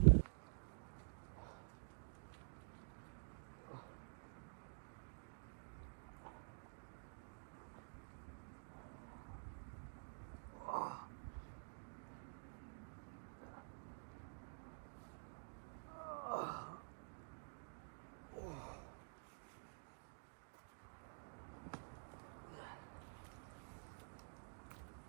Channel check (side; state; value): left; silent; digital silence